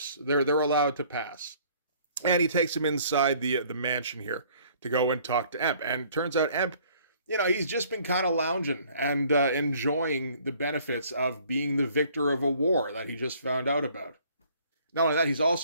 They're allowed to pass. And he takes him inside the mansion here to go and talk to Emp. And turns out Emp, he's just been kind of lounging and enjoying the benefits of being the victor of a war that he just found out about. Not only that, he's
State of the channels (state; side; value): inverted; both; correlation -0.58